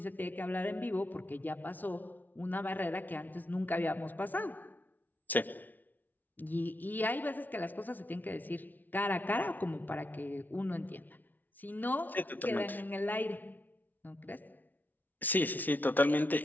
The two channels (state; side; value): late; right; 0.082 ms